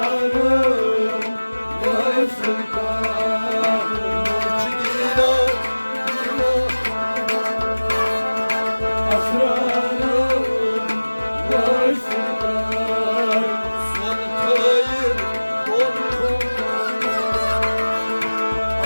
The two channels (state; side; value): inverted; both; correlation -1.00